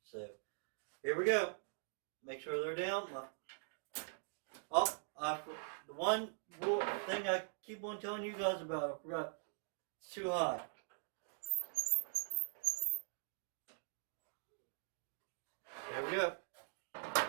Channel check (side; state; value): left; silent; digital silence